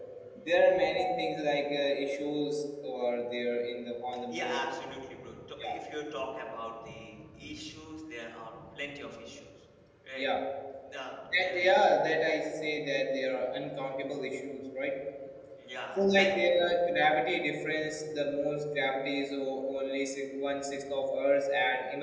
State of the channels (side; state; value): both; identical; correlation 1.00